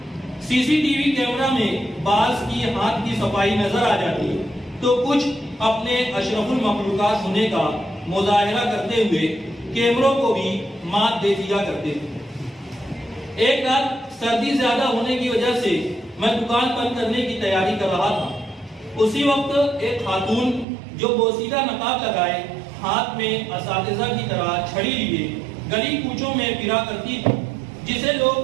سی سی ٹی وی کیمرہ میں بعض کی ہاتھ کی صفائی نظر آ جاتی تو کچھ اپنے اشرف المخلوقات ہونے کا مظاہرہ کرتے ہوئے کیمروں کو بھی مات دے دیا کرتے تھے۔ ایک رات سردی زیادہ ہونے کی وجہ سے میں دکان بند کرنے کی تیاری کر رہا تھا اسی وقت ایک خاتون جو بوسیدہ نقاب لگائے ہاتھ میں اساتذہ کی طرح چھڑی لیے گلی کوچوں میں پھرا کرتی تھی، جسے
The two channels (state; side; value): drops out; left; at 20.7 s